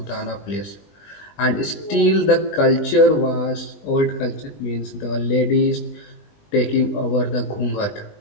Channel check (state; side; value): late; right; 20 ms